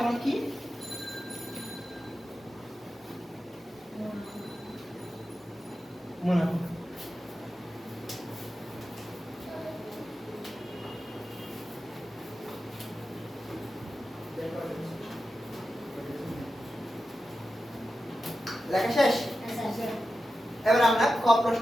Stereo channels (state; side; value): normal; both; correlation 0.91